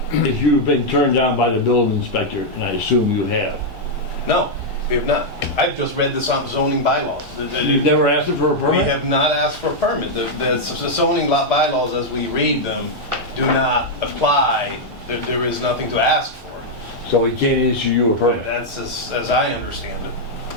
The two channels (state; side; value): normal; both; correlation -0.03